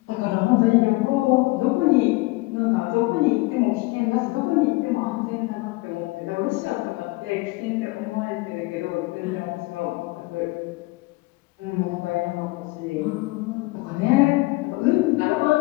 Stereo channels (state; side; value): quieter; right; 22.7 dB